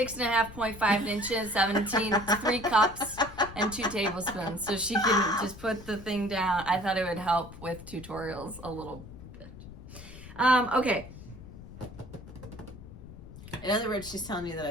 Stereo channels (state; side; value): noise; left; rumble, 15 dB below the sound